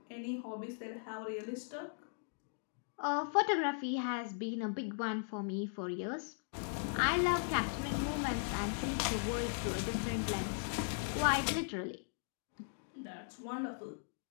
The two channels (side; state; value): right; silent; digital silence